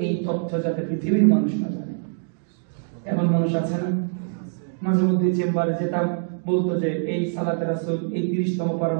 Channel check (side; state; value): left; silent; digital silence